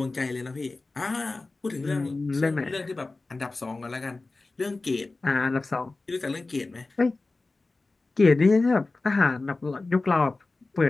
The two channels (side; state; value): right; quieter; 3.4 dB